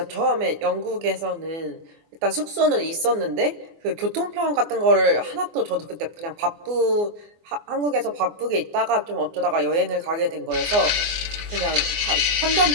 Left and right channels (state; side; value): late; left; 24 ms